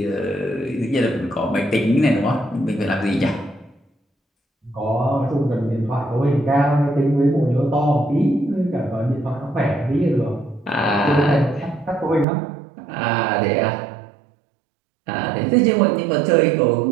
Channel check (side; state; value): left; drops out; at 12.2 s